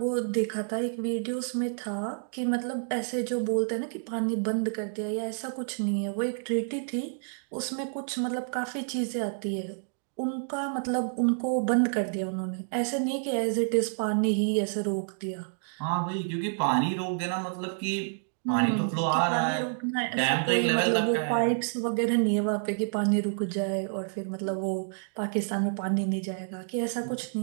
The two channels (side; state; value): left; silent; digital silence